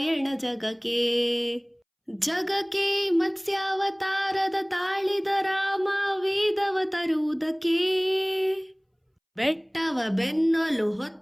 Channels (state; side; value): identical; both; correlation 1.00